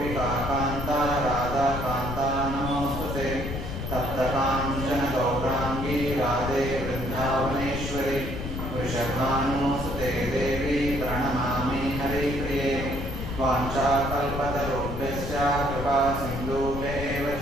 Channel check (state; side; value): noise; left; rumble, 5 dB below the sound